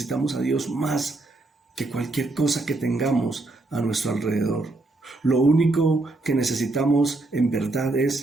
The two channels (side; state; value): left; quieter; 3.0 dB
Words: a Dios más que cualquier cosa que tengamos a nuestro alrededor. Lo único que necesitamos en verdad